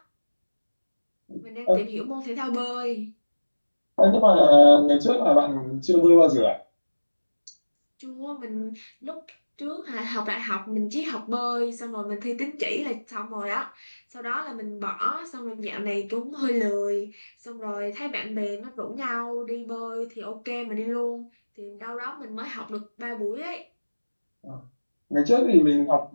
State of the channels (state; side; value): inverted; both; correlation -1.00